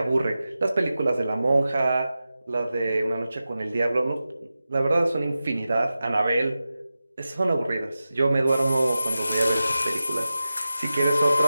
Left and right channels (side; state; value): both; inverted; correlation -0.93